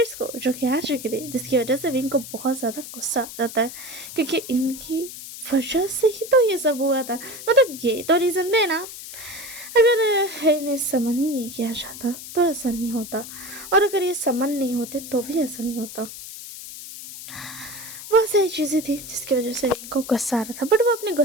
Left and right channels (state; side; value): noise; left; hiss, 12 dB below the sound